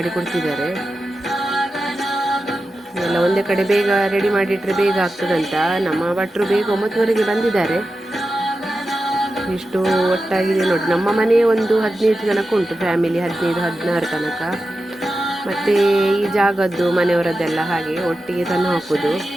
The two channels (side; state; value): both; normal; correlation 0.92